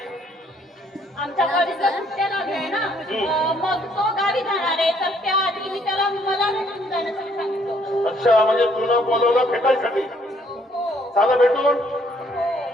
आमच्या कॉलेजला सुट्ट्या लागल्या ना मग तो गावी जाणार आहे तर त्याआधी मी त्याला मला भेटून जाण्यासाठी सांगितलं. अच्छा म्हणजे तुला बोलवलं भेटायसाठी. चला भेटून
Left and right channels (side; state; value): both; normal; correlation 0.65